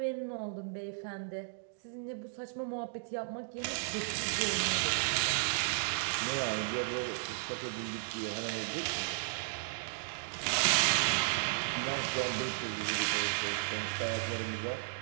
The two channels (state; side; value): silent; left; digital silence